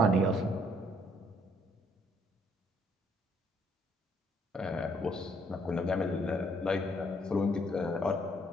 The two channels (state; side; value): normal; both; correlation 0.67